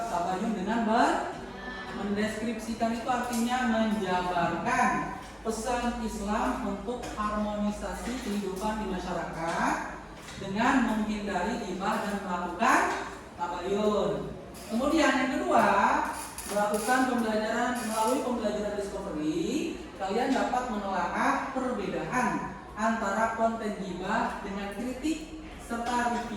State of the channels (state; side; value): identical; both; correlation 1.00